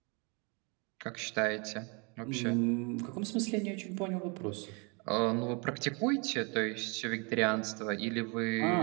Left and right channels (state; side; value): quieter; left; 32.4 dB